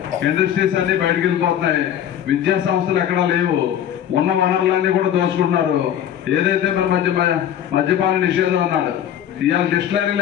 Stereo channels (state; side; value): quieter; right; 10.2 dB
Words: ఇండస్ట్రీస్ అన్ని బయటకు వెళ్ళిపోతున్నాయి. విద్యా సంస్థలు ఎక్కడా లేవు. ఉన్న వనరులన్నీ కూడా దోచుకుంటున్నారు. ఏదైతే మన మద్యపాన నిషేధం అన్నాడు, ఇవాళ డిస్టిలరీలు